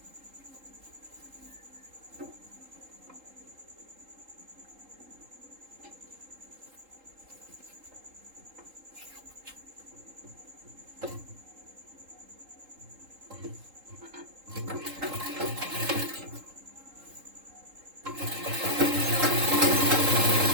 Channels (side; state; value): left; late; 3.8 ms